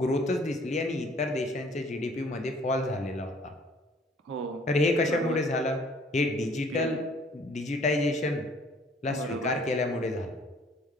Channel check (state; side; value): normal; both; correlation 0.57